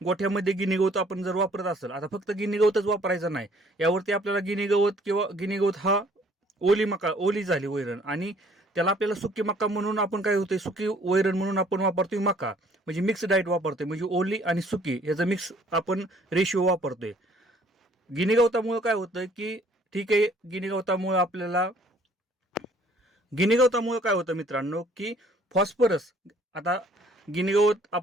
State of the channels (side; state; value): both; normal; correlation 0.59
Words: गोठ्यामध्ये गिनी गवत आपण जर वापरत असेल, आता फक्त गिनी गवतच वापरायचं नाही, यावरती आपल्याला गिनी गवत किंवा गिनी गवत हा ओली झाली वैरण आणि त्याला आपल्याला सुकी मका म्हणून आपण काय होतंय, सुकी वैरण म्हणून आपण वापरतोय मका, म्हणजे मिक्स डाएट वापरतोय, म्हणजे ओली आणि सुकी याचा मिक्स आपण रेशिओ वापरतोय. गिनी गवतामुळे काय होतं की ठीक आहे, गिनी गवतामुळे काय होतं मित्रांनो की फॉस्फरस, आता गिनी गवत